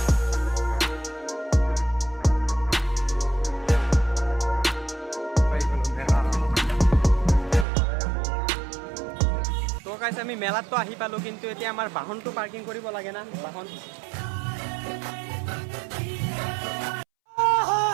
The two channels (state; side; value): drops out; left; at 7.7 s